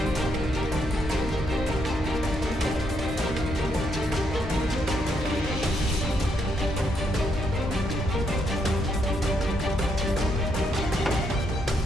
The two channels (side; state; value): both; normal; correlation 0.76